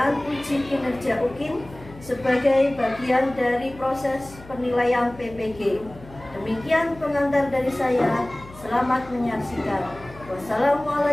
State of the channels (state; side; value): noise; left; hum, 19 dB below the sound